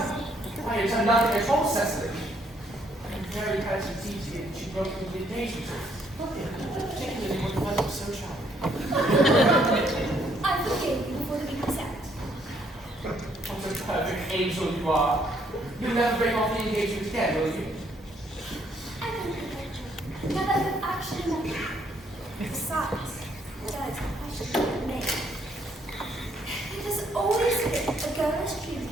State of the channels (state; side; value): normal; both; correlation 0.68